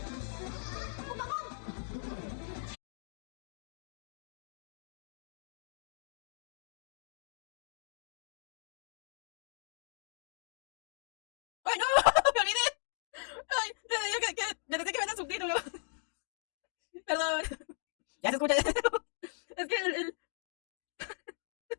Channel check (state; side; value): silent; right; digital silence